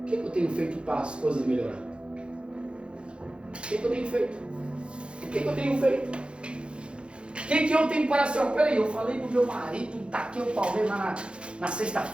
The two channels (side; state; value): left; late; 0.056 ms